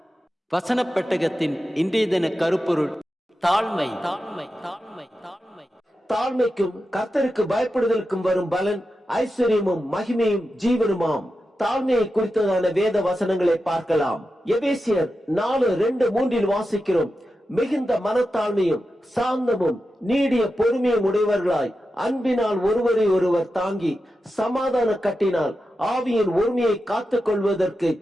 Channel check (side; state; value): both; normal; correlation 0.90